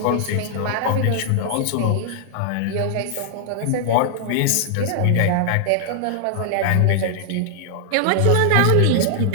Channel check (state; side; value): different; both; correlation -0.01